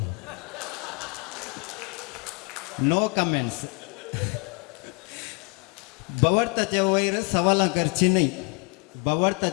नो कमेंट्स बवडताच्या वयर सवालां करची न्ही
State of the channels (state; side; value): quieter; right; 33.0 dB